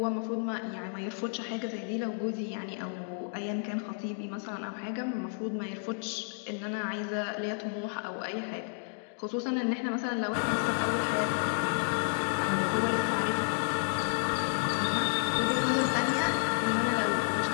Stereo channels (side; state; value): right; silent; digital silence